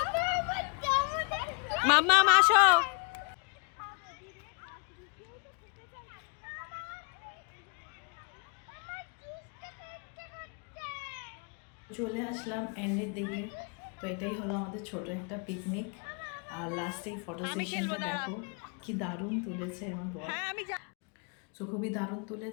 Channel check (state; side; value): quieter; right; 35.9 dB